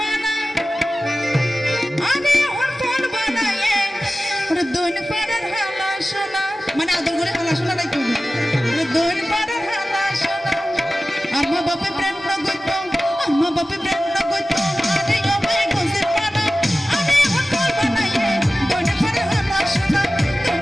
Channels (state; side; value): normal; both; correlation 0.96